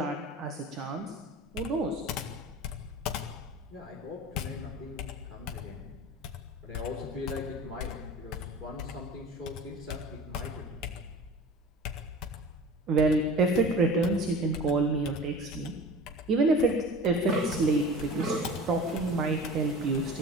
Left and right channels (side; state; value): both; normal; correlation 0.38